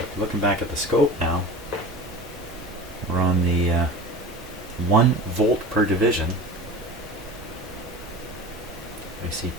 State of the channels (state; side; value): normal; both; correlation 0.35